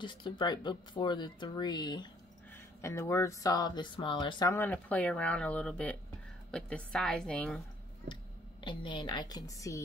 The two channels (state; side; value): normal; both; correlation 0.62